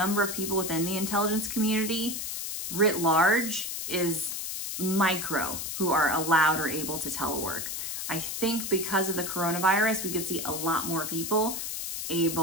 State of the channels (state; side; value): noise; left; hiss, 4 dB below the sound